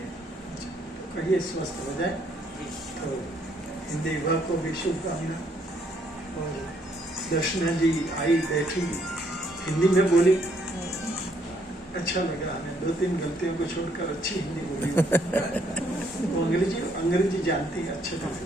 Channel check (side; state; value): both; normal; correlation 0.69